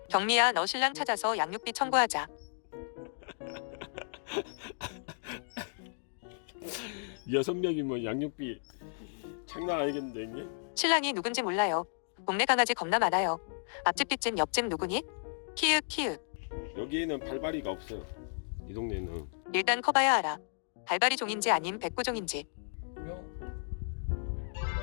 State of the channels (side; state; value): right; silent; digital silence